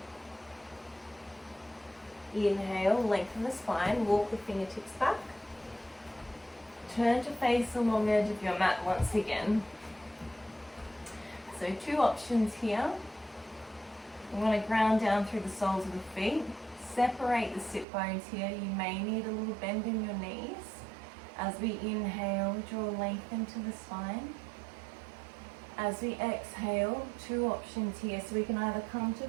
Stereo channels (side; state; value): left; drops out; at 17.9 s